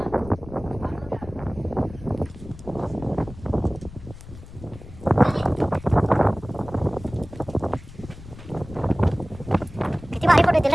किती भारी फोटो येतील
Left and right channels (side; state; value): left; noise; rumble, 16 dB below the sound